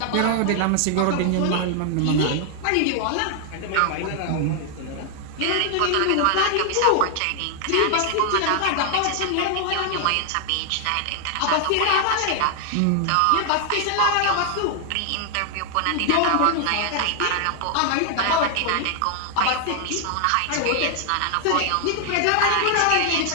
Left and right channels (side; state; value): both; different; correlation 0.00